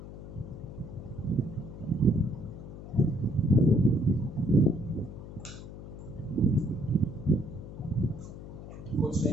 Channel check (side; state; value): left; noise; hum, 12 dB below the sound